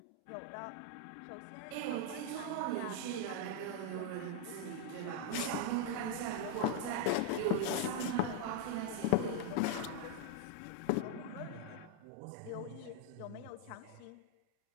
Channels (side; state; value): both; different; correlation 0.00